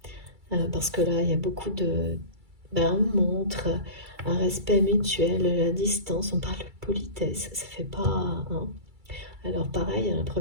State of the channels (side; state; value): left; late; 2.3 ms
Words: Parce que là, il y a beaucoup de... on montre un respect mutuel, la distance, on parle de politesse, ça fait pas... Hein. Alors pareil, la